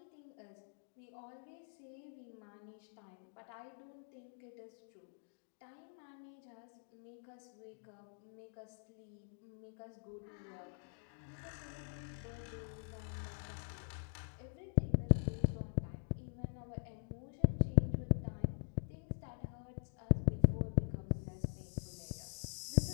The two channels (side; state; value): right; silent; digital silence